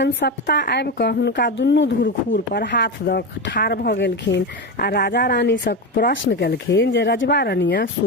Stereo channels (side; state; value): both; normal; correlation 0.18